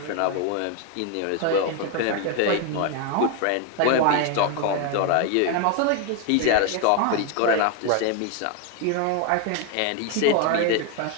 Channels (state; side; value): different; both; correlation 0.01